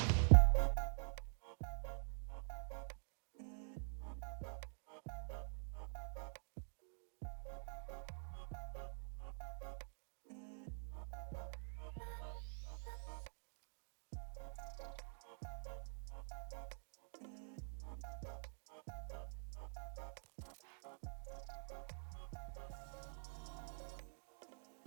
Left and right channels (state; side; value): silent; left; digital silence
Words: Visual communication, it doesn't have to be a big overwhelming thing. It can actually be really enjoyable. Everyone's got the ability to do it, even if we're not formally trained. There's just a couple things we just need to keep in mind. These are all stuff that we can do. You don't need a formal training. They're just ways of upping our game a little bit, getting people engaged with the visual media, getting people to really hone in on what you're saying. And you know,